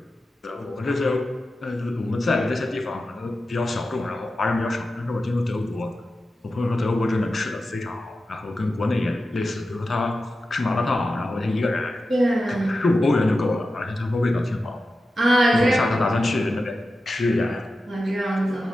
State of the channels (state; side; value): normal; both; correlation 0.92